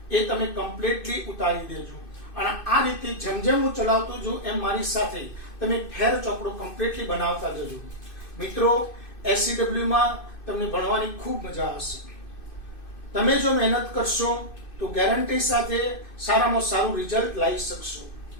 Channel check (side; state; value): right; late; 2.6 ms